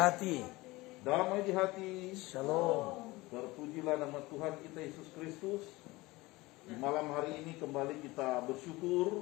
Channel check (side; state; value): right; quieter; 21.0 dB